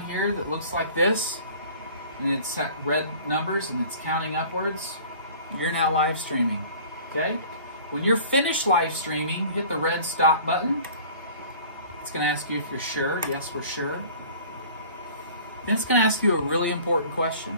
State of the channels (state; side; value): inverted; both; correlation -0.47